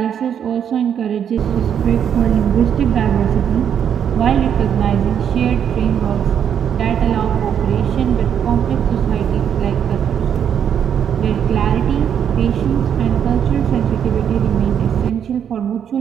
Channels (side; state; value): left; quieter; 8.6 dB